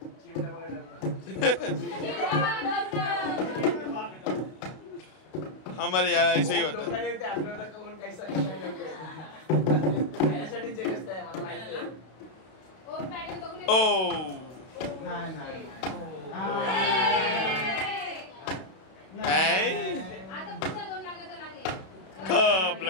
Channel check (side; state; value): right; late; 32 ms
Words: हमारे यहाँ ऐसे ही होता है. ओ